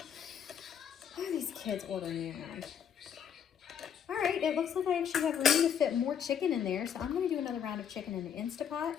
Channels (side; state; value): right; quieter; 8.2 dB